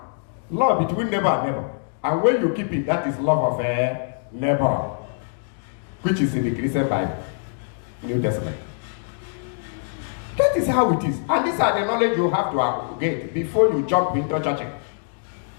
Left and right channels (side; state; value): right; silent; digital silence